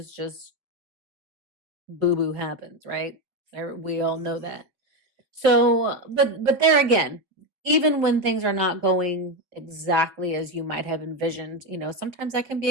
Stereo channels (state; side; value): late; left; 5.2 ms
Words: just boo-boo happens, right? We all know that. So, but there again, even when things are not going exactly as you might have envisioned, sometimes that can be